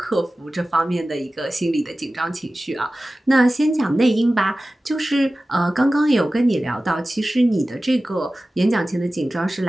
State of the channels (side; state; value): both; normal; correlation 0.96